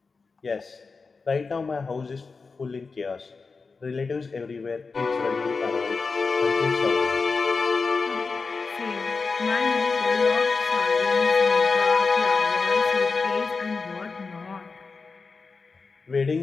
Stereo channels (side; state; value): right; quieter; 4.5 dB